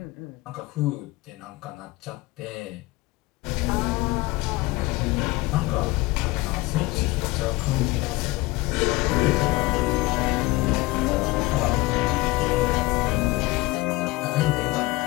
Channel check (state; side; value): quieter; right; 21.1 dB